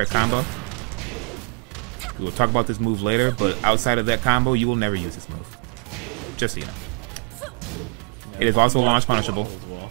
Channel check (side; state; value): left; quieter; 36.8 dB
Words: a combo. We'll talk about this move later, but outside of that combo, you will never use this move. Just so you know. It is also launch punishable.